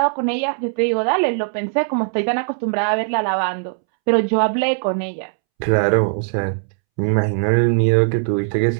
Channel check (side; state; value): left; silent; 66 dB below the other